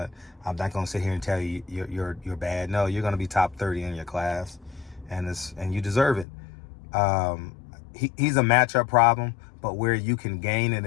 I'm not going to sit here and tell you you're bad. No, you're going to be top 30 in your class, and you deserve it. He's a matchup problem, but where you can gain an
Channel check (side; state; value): right; drops out; at 6.2 s